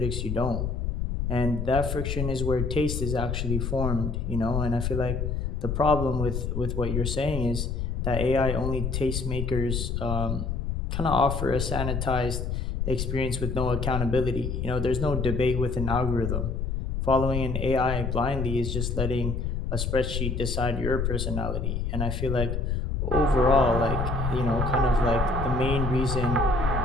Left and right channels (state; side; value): noise; left; rumble, 2 dB below the sound